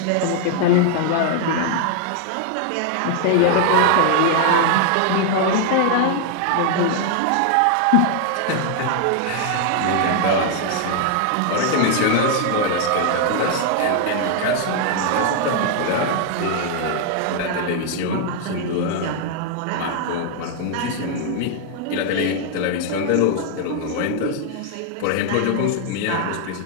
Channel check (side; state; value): both; different; correlation 0.00